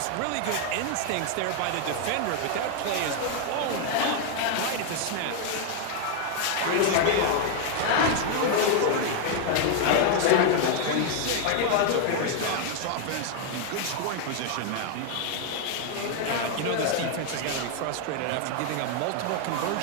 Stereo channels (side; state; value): both; different; correlation 0.00